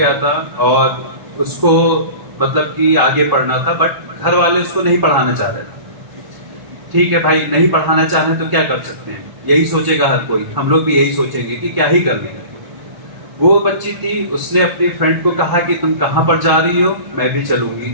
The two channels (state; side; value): late; left; 1.0 ms